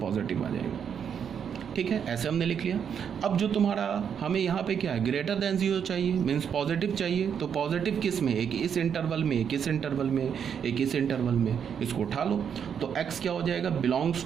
आ जाएगा। ठीक है, ऐसे हमने लिख लिया। अब जो तुम्हारा हमें यहाँ पे क्या है, ग्रेटर देन 0 चाहिए, मीन्स पॉजिटिव चाहिए। तो पॉजिटिव किस में? एक इस इंटरवल में, एक इस इंटरवल में, एक इस इंटरवल में, इसको उठा लो। तो x क्या हो जाएगा? Belongs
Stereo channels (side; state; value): left; quieter; 7.7 dB